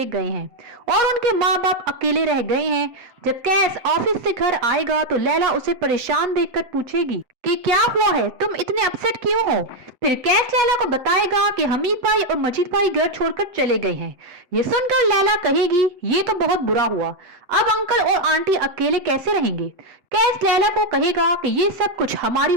गए हैं और उनके माँ बाप अकेले रह गए हैं। जब कैस ऑफिस से घर आएगा तो लैला उसे परेशान देखकर पूछेगी कि क्या हुआ है, तुम इतने अपसेट क्यों हो? फिर कैस लैला को बताएगा कि हमीद भाई और मजीद भाई घर छोड़कर चले गए हैं। ये सुनकर लैला कहेगी ये तो बहुत बुरा हुआ, अब अंकल और आंटी अकेले कैसे रहेंगे? कैस लैला को कहेगा कि ये सब कुछ हमारी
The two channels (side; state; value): left; late; 7.8 ms